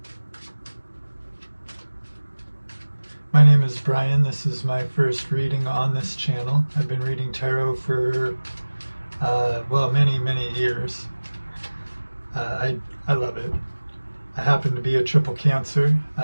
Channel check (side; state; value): both; inverted; correlation -1.00